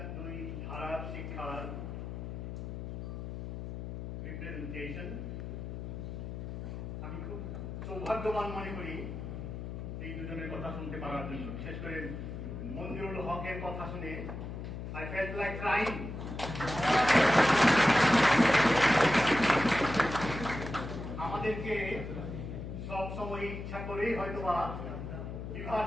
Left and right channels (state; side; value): noise; left; hum, 7 dB below the sound